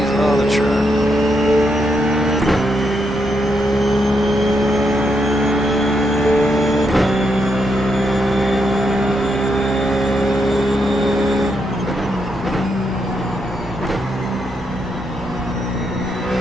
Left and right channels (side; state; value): both; normal; correlation 0.80